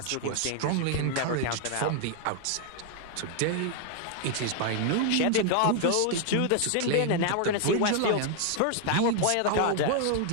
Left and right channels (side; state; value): both; different; correlation 0.00